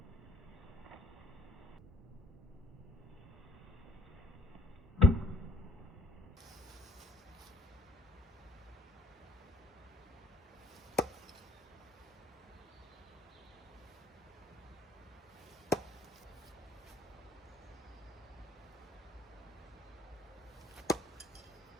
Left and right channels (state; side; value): normal; both; correlation 0.63